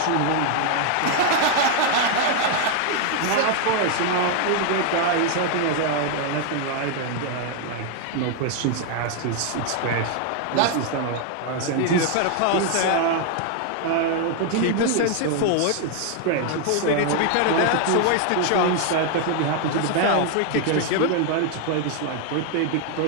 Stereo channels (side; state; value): both; different; correlation 0.00